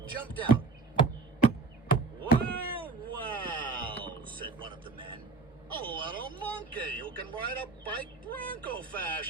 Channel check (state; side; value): quieter; left; 4.1 dB